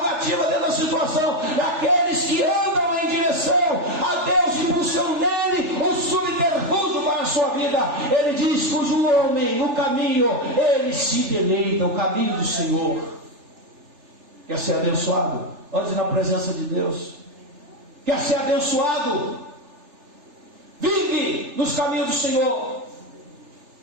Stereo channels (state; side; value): late; left; 3.4 ms